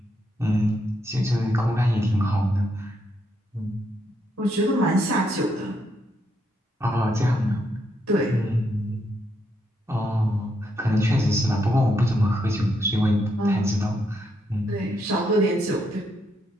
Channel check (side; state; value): both; normal; correlation 0.78